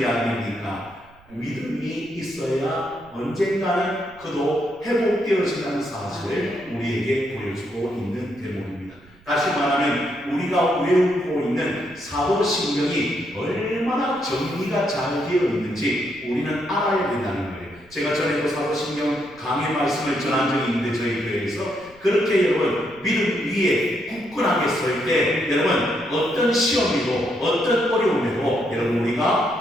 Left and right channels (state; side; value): noise; right; rumble, 27 dB below the sound